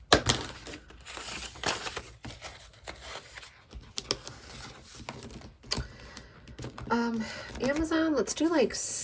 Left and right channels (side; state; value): both; identical; correlation 1.00